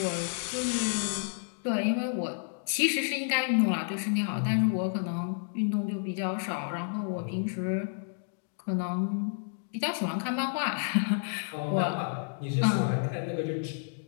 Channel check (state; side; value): silent; right; digital silence